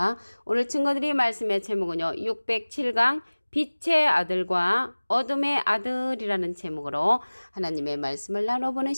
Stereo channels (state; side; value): inverted; both; correlation -1.00